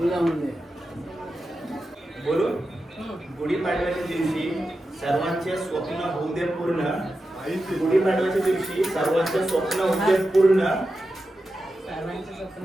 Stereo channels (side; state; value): both; normal; correlation 0.91